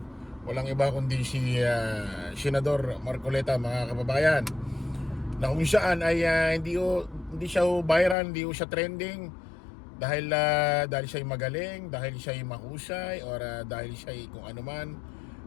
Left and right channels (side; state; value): right; drops out; at 8.2 s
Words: Walang iba kundi si Senador Marcoleta mga kababayan. Na kung saan ay hindi siya viral, hindi siya trending dahil siya magaling, dahil siya mahusay, or dahil siya kung ano man.